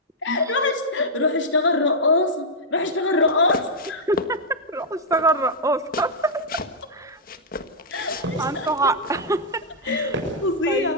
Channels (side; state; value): both; normal; correlation -0.06